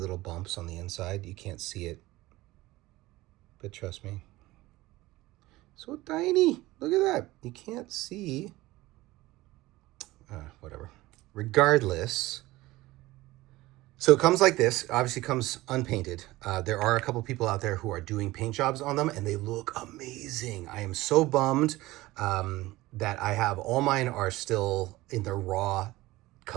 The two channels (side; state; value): left; quieter; 18.5 dB